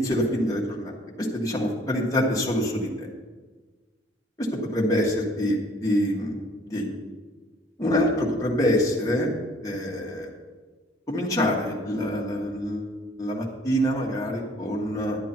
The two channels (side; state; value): both; normal; correlation 0.57